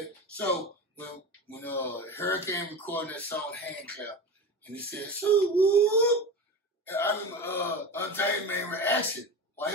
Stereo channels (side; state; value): both; normal; correlation 0.27